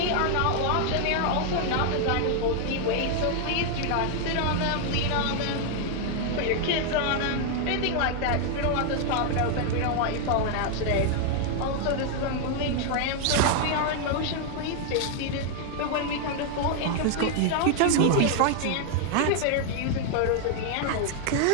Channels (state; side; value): different; both; correlation 0.00